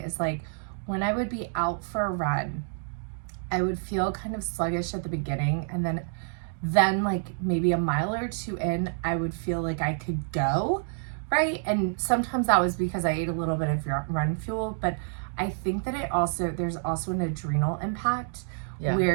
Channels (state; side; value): silent; left; digital silence